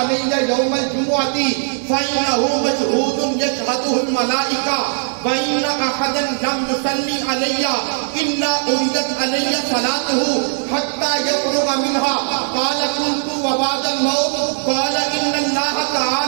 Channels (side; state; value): left; silent; digital silence